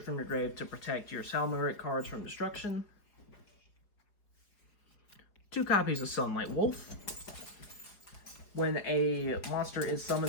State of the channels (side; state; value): right; late; 4.9 ms